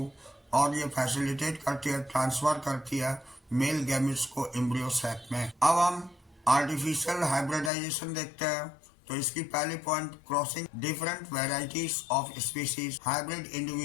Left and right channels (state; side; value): drops out; right; at 7.7 s